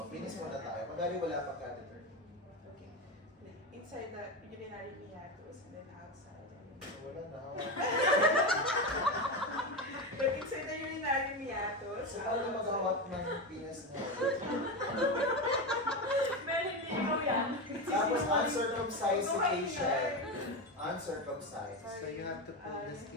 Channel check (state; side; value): normal; both; correlation 0.17